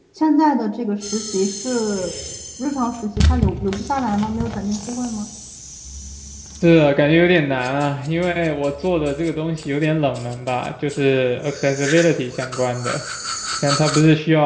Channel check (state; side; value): identical; both; correlation 1.00